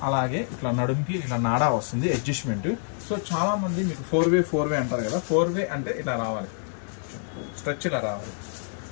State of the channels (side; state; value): right; silent; digital silence